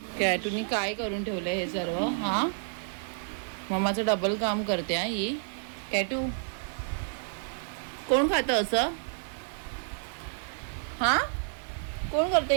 कॅटूनी काय करून ठेवलंय हे सर्व? हा, मम्माचं डबल काम करते हा ही. कॅटू, कोण खातं असं? हा, कोण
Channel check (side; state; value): left; silent; digital silence